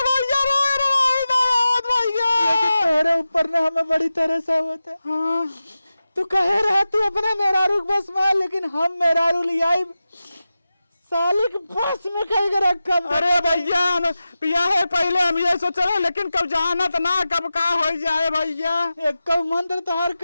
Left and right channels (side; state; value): both; inverted; correlation -0.94